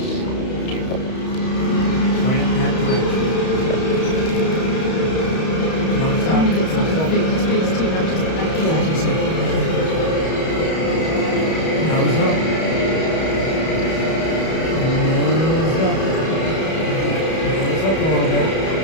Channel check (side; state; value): right; late; 31 ms